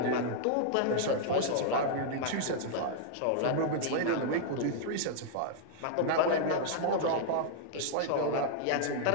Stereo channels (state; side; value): different; both; correlation -0.01